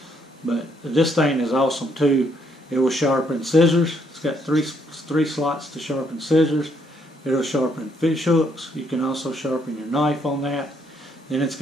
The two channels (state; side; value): normal; both; correlation 0.71